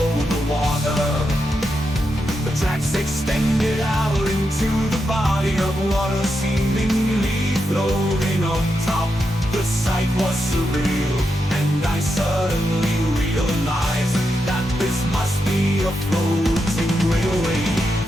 over the water. The tracks extended out into the body of water, seemingly floating on top. The sight was surreal, and I suddenly realized that this must be a floating railway.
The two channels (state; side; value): normal; both; correlation 0.85